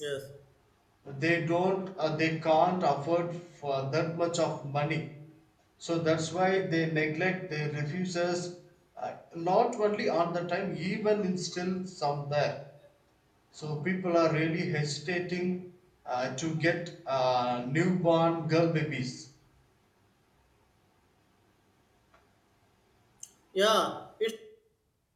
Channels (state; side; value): identical; both; correlation 1.00